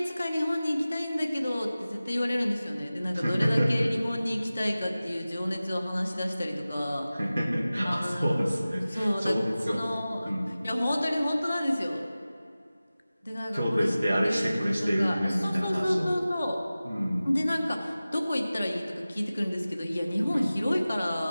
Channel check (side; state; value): both; inverted; correlation -0.97